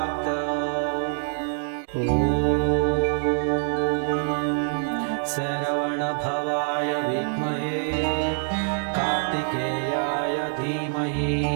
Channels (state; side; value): silent; left; 62 dB below the other